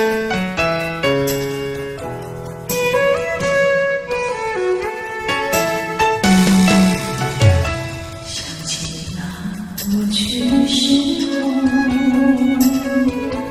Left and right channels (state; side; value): identical; both; correlation 1.00